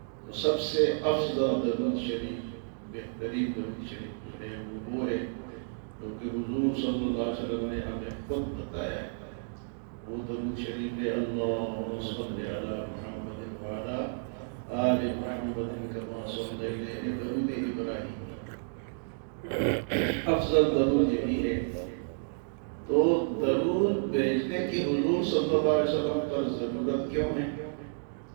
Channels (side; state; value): left; silent; digital silence